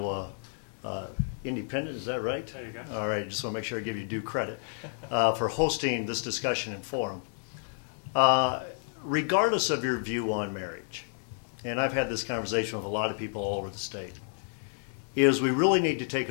Independent, is that right? There you go. All right, just want to make sure I give you due credit for hosting this discussion and forum. Regardless of your view on marriage, and I've had this conversation with a lot of people all over the state, is we really need to take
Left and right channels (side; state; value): right; silent; digital silence